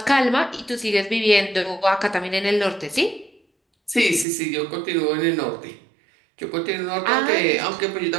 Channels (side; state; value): left; drops out; at 4.2 s